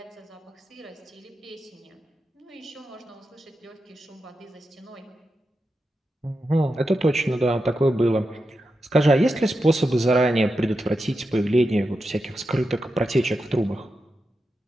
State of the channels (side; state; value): both; normal; correlation 0.88